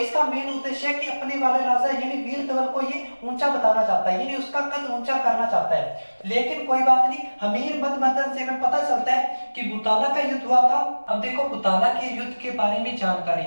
मेन उद्देश्य है कि अपने वाले राजा यानी वीर धवल को ये ऊंचा बताना चाहता है, यानी उसका कद ऊंचा करना चाहता है। लेकिन कोई बात नहीं, हमीर मत मर्दन से हमें पता चलता है कि बुताला का युद्ध हुआ था। अब देखो, बुताला के युद्ध के बारे में जानकारी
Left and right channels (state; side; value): inverted; both; correlation -1.00